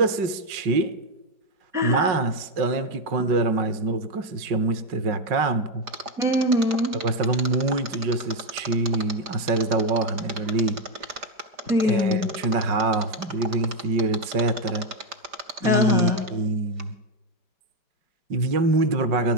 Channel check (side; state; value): left; late; 4.9 ms